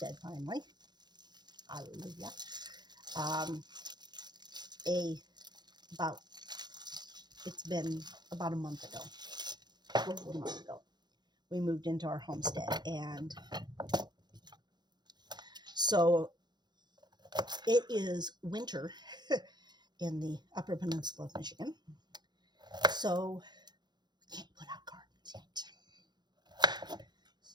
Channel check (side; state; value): left; late; 0.21 ms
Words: finally. Hallelujah. It's been about a month ago, over a month ago, we moved into our homestead, and so it is winter in the Upper Peninsula of Michigan, so we can't put out gardens yet.